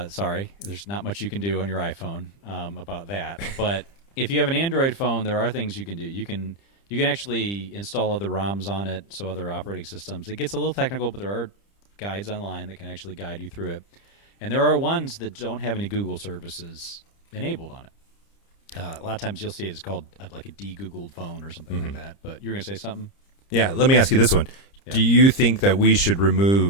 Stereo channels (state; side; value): late; right; 30 ms